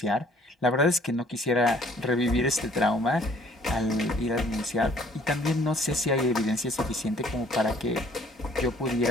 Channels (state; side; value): normal; both; correlation 0.58